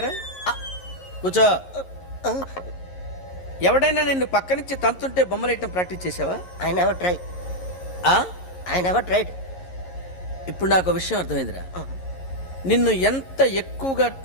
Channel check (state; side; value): late; right; 11 ms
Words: కూర్చో. ఎవడైనా నిన్ను పక్క నుంచి తంతుంటే బొమ్మలేయటం ప్రాక్టీస్ చేసావా? I never try. ఆ? I never tried. ఇప్పుడు నాకు ఒక విషయం అర్థమైందిరా. నిన్ను ఎంత ఎక్కువగా